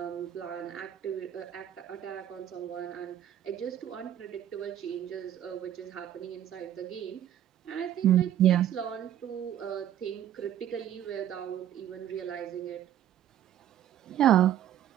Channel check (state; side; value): quieter; left; 11.0 dB